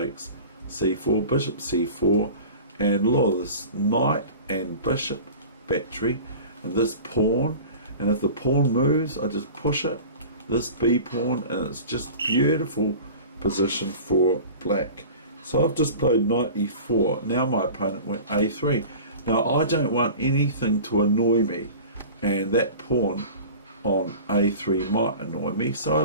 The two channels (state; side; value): inverted; both; correlation -0.38